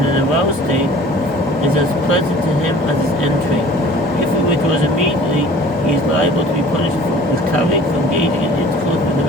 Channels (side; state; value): both; normal; correlation 0.48